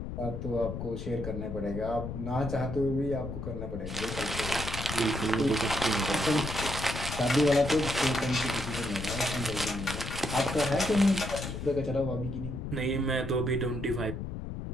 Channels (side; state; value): left; noise; rumble, 6 dB below the sound